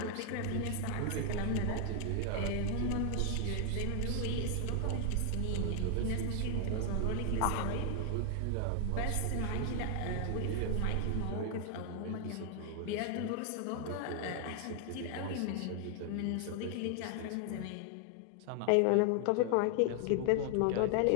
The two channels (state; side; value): different; both; correlation 0.00